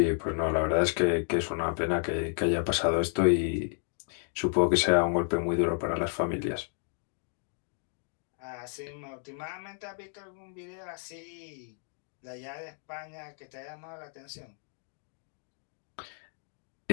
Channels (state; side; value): silent; right; 57 dB below the other